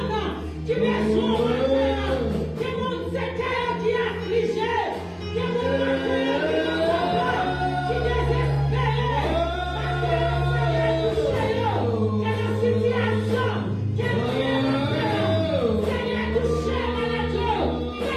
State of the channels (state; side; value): identical; both; correlation 1.00